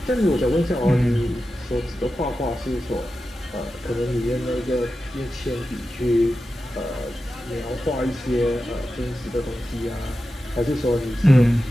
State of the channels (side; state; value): both; normal; correlation 0.92